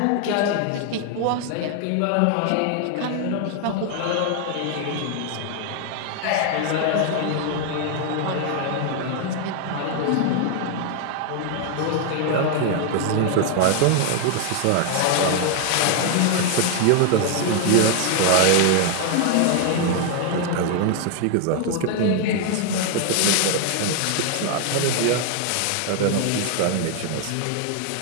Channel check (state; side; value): different; both; correlation 0.00